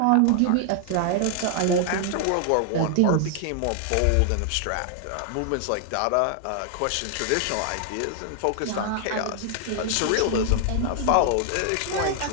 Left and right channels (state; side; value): different; both; correlation 0.00